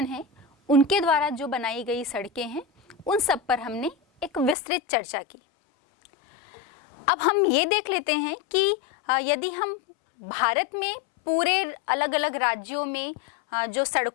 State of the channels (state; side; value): drops out; right; at 4.5 s